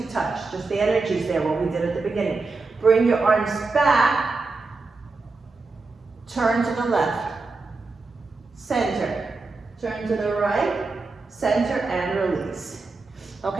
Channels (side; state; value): left; quieter; 3.9 dB